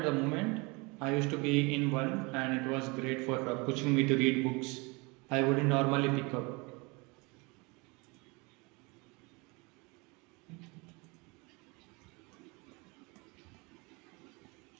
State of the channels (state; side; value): quieter; left; 27.5 dB